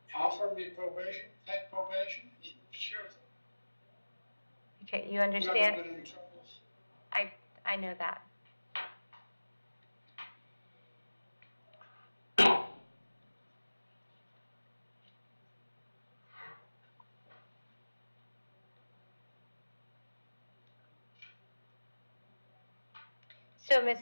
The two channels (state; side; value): inverted; both; correlation -1.00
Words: Offer me probation, take probation? Sure. Okay, you I'm not understand? gonna get in trouble. I know that. So,